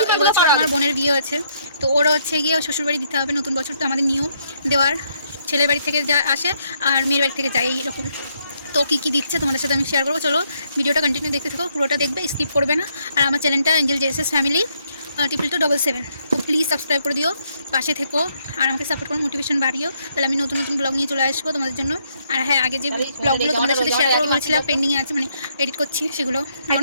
এবছর আমার বোনের বিয়ে হয়েছে, তো ওরও হচ্ছে গিয়ে শ্বশুর বাড়ি দিতে হবে। নতুন বছর তো আমাদের নিয়ম দেওয়ার, ছেলের বাড়ি থেকে যা আসে আর মেয়ের বাড়ি থেকে যায় এইরকম। তো কী কী দিচ্ছে তোমাদের সাথে আমি শেয়ার করবো। চলো ভিডিওটা কন্টিনিউ দেখতে থাকো, পুরোটা দেখবে, স্কিপ করবে না। আর আমার চ্যানেলটা এঞ্জেল জেসেস ফ্যামিলি 2277, তো প্লিজ সাবস্ক্রাইব করে দিও, পাশে থেকো আর আমাকে সাপোর্ট করো, মোটিভেশন বাড়িও, তাহলে আমি নতুন নতুন ব্লগ নিয়ে চলে আসবো তোমাদের জন্য। আর হ্যাঁ, আগে যে ব্লগগুলো তোমাদের সাথে শেয়ার করবো বলেছিলাম পেন্ডিংয়ে আছে, মানে এডিট করছি সেগুলো।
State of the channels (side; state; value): both; inverted; correlation -0.73